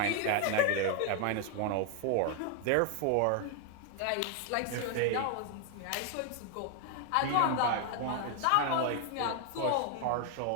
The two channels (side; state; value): both; different; correlation 0.01